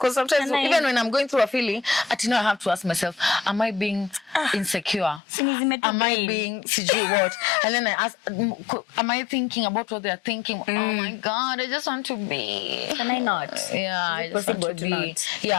sometimes even when I'm going through a feeling, I have to ask myself, am I being insecure? Am I being what? And then I ask, am I thinking about what they're thinking? Oh my God, I just want to be. Can I not? Yeah, I just want to be. Not?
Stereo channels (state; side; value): drops out; right; at 5.2 s